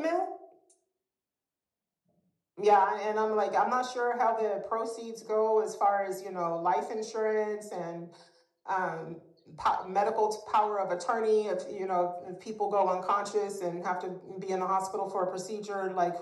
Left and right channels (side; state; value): both; identical; correlation 1.00